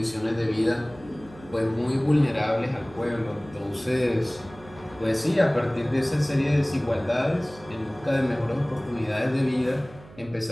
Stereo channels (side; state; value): right; noise; hum, 21 dB below the sound